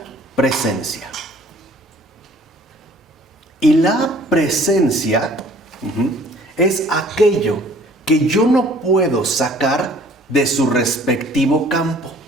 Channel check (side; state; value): both; normal; correlation 0.54